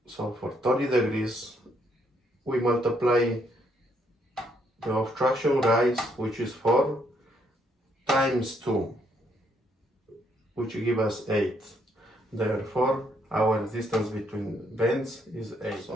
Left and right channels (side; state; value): both; normal; correlation 0.72